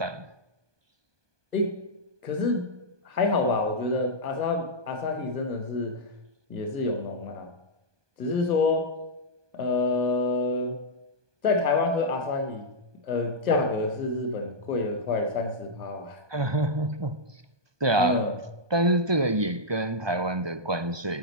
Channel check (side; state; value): left; late; 1.2 ms